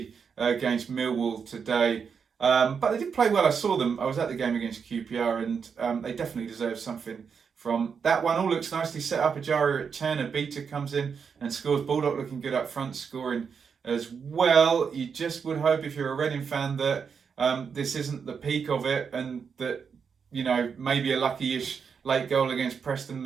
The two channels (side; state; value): left; quieter; 6.3 dB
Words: against Millwall today. But they did play well. I saw them. I was at the game against QPR, and they definitely deserve something from that one. All looks nicely set up. Ejaria at 10. A beater comes in and scores. Baldock looking good up front, scoring as well. You just would hope, if you're a Reading fan, that this isn't the peak of it, and that, you know, maybe a lucky-ish late goal against Preston,